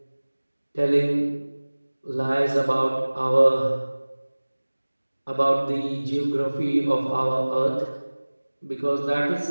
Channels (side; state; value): both; inverted; correlation -1.00